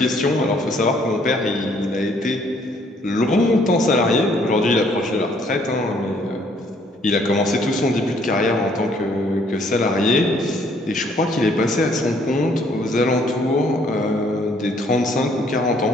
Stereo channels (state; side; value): normal; both; correlation 0.64